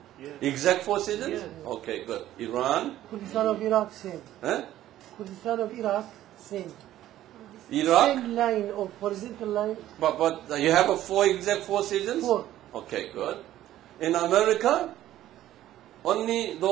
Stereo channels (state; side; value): quieter; left; 13.4 dB